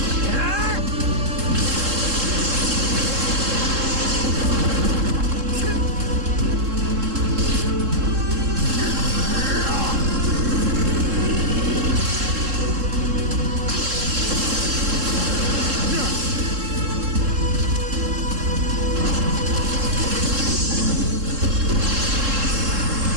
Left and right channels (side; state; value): left; late; 3.7 ms